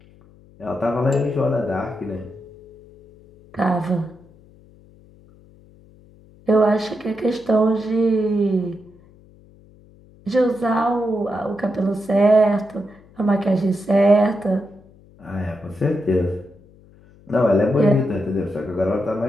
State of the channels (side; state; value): left; noise; hum, 26 dB below the sound